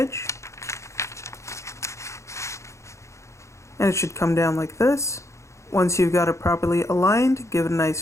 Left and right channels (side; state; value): right; late; 0.14 ms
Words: And it should come down like this. Once you've got it properly aligned, give it a